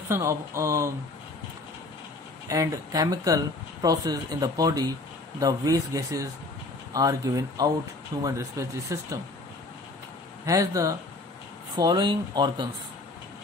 of and chemical process in the body, the waste gases are given out. Human respiratory system has the following organs.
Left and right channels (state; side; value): quieter; right; 3.1 dB